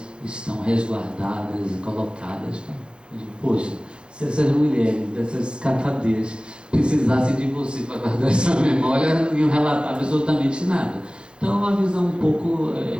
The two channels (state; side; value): late; left; 0.053 ms